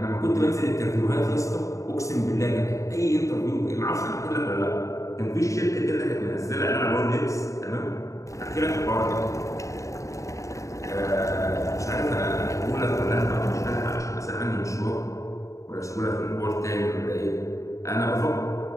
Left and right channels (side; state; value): right; late; 0.15 ms